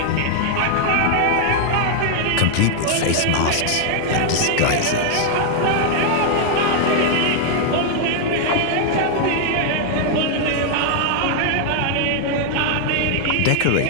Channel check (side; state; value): both; different; correlation 0.00